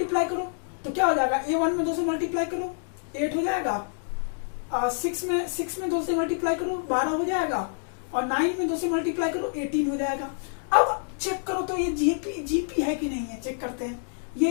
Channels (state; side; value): silent; right; digital silence